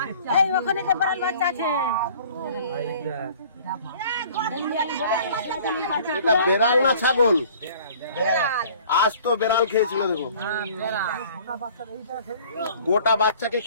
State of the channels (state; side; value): inverted; both; correlation -0.51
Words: এটা বেড়াল না ছাগল, আজ তো বেড়াল খেয়েছিল। দেখো গোটা বাচ্চাকে